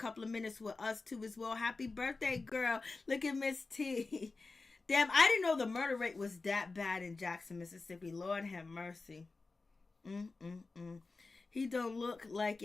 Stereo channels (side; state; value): right; quieter; 3.8 dB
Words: of minutes with us, too, as well. Happy birthday, girl. Look at Miss T. Damn, I didn't know the murder rate was that bad in Jackson, Mississippi. Lord have mercy. He don't look like